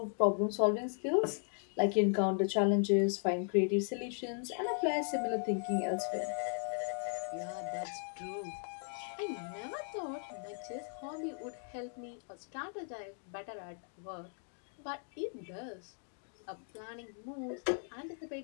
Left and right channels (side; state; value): right; silent; 53 dB below the other